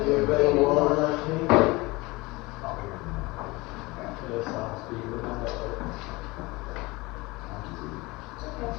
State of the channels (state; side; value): quieter; right; 23.0 dB